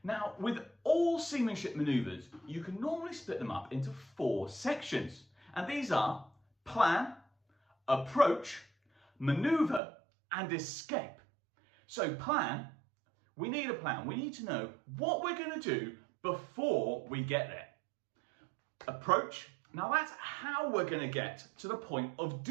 Now, with all seamanship maneuvers, you can normally split them up into 4 sections, and these are plan, approach, maneuver, and escape. So plan, we need a plan. We need to know what we're going to do before we get there. Approach, now that's how we're going to get to the point of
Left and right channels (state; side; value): drops out; left; at 9.8 s